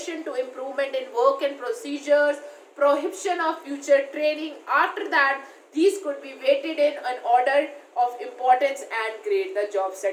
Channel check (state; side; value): identical; both; correlation 1.00